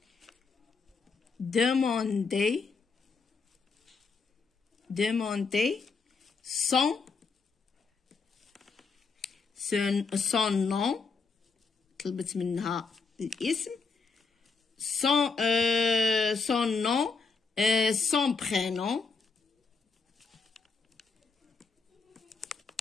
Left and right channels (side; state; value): right; quieter; 4.6 dB